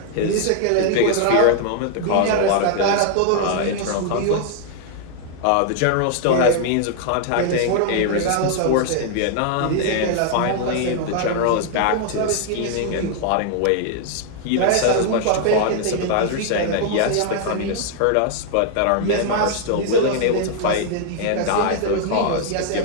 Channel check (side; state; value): both; different; correlation -0.01